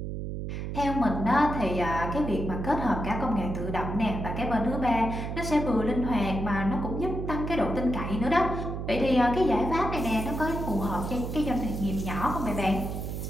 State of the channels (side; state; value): right; noise; hum, 5 dB below the sound